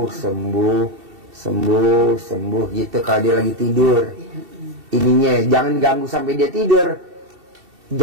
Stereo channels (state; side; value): late; left; 2.7 ms